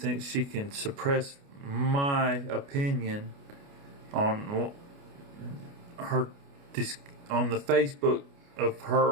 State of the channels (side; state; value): left; late; 29 ms